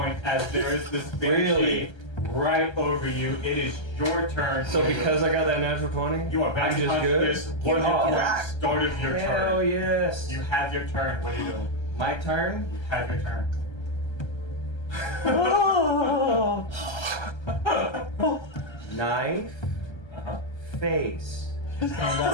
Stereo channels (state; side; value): late; right; 1.3 ms